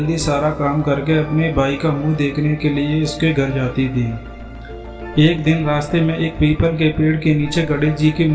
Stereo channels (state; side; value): identical; both; correlation 1.00